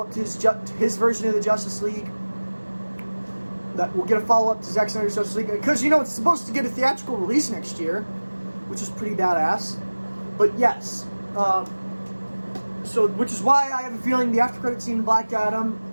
to his version of the Justice League. That we'll get a follow-up to Zack Snyder's Justice League. Because, you know, it's supposed to get a theatrical release next year, which is pretty badass. But yes, which is why I have a feeling the after-credit scene in Black Adam,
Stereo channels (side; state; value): both; inverted; correlation -1.00